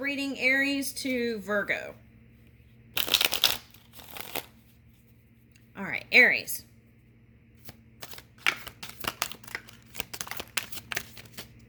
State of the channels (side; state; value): both; identical; correlation 1.00